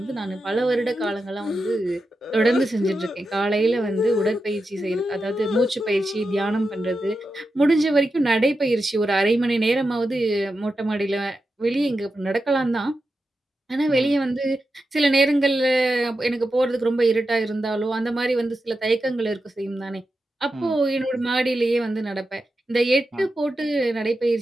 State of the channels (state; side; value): normal; both; correlation 0.89